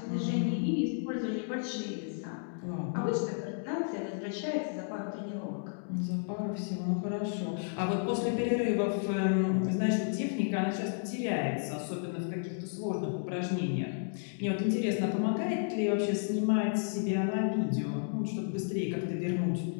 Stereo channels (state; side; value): silent; right; digital silence